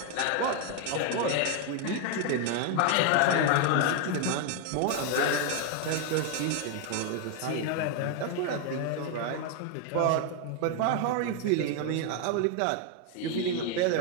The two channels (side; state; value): both; different; correlation 0.01